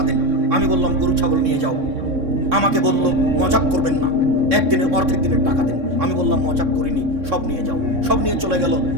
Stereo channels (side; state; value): left; late; 3.6 ms